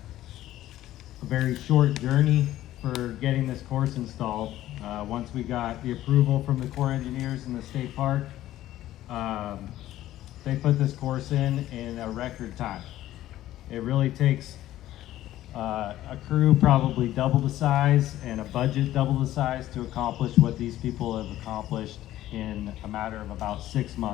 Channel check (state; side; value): quieter; right; 14.1 dB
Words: very short journey for getting this course installed. Once we got the approval from the Corps engineers in the state park, they put this course in a record time. It really takes a crew probably double the size and a budget double the size to accomplish what these people have accomplished in a matter of about 6